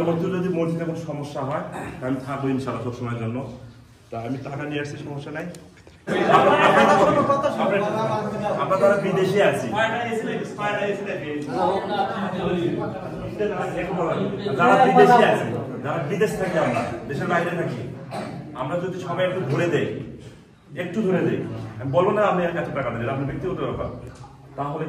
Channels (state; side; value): identical; both; correlation 1.00